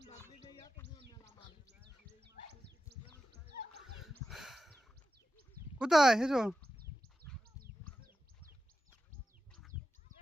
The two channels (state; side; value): normal; both; correlation 0.91